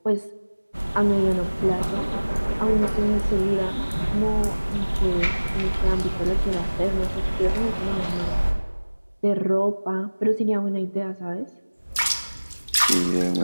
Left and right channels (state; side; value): inverted; both; correlation -1.00